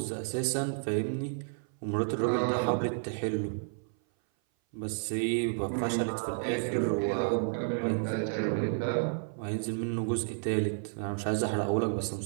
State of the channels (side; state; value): left; silent; 57 dB below the other